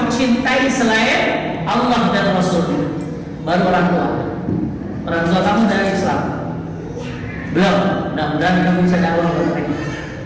cintai selain Allah dan Rasul. Baru orang tua. Orang tua kamu dari Islam belum. Mudah-mudahan kamu bisa dakwah mereka.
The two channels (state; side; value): identical; both; correlation 1.00